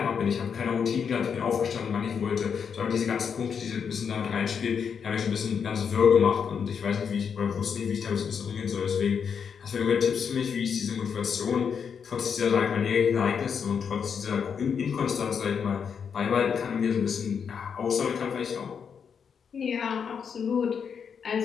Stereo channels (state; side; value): quieter; right; 6.8 dB